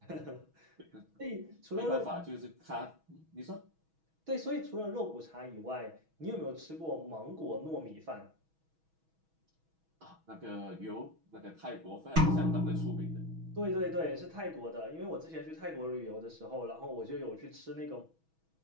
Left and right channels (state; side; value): late; left; 6.2 ms